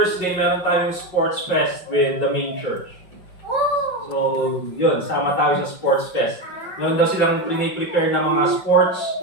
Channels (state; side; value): late; right; 5.5 ms